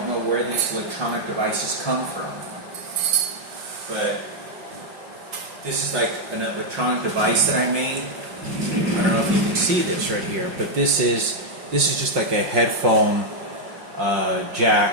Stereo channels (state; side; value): late; left; 5.6 ms